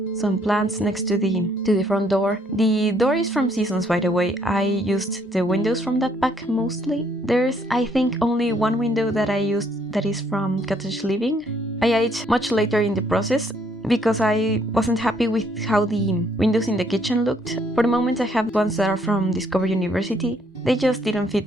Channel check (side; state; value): both; normal; correlation 0.68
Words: some plants next to the front door. The door is from Seasons, by the way. I used the windows from that pack mostly. There's, I think, only one window that I used that is from Cottage Living. I added much later in the process because I wasn't happy with how the windows in the kitchen looked. For the moment I have ones that are from Discover University. They just didn't fit